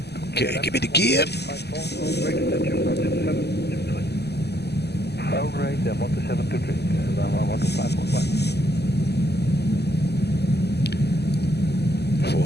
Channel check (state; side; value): late; right; 0.48 ms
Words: Okay, give me the gear. All right, then 12723, 12515.